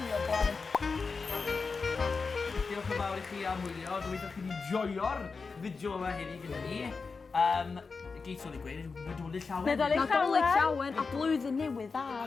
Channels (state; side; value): quieter; right; 4.6 dB